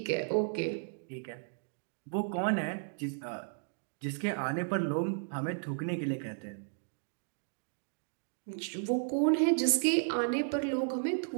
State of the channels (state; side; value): silent; left; digital silence